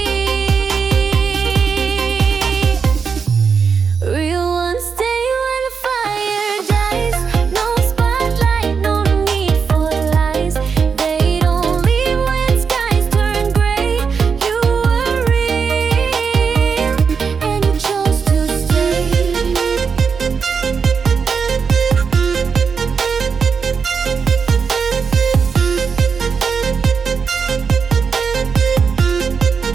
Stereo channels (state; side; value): quieter; left; 5.9 dB